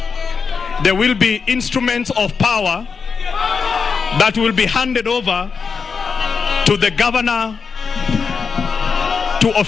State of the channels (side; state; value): right; quieter; 5.5 dB